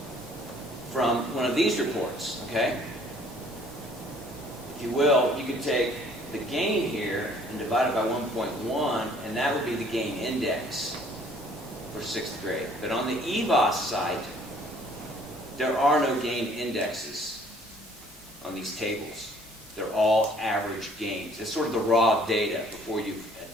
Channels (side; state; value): both; normal; correlation 0.58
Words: from one of these reports, okay? If you will, you could take the gain here and divide it by 1.1, and that would be the gain index for 6th grade. But on the EVOS site, there are no gain indexes on these tables. They're all average gains. It's sort of the raw data before you've